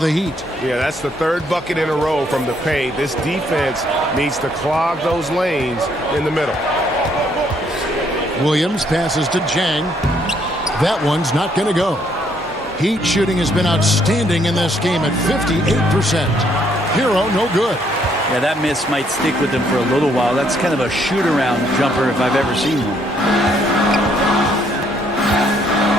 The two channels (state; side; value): normal; both; correlation 0.69